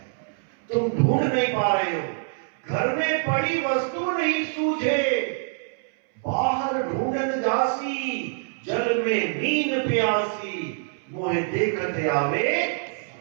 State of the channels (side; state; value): left; silent; 62 dB below the other